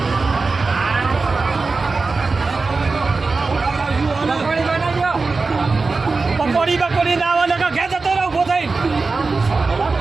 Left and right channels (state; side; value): quieter; left; 4.0 dB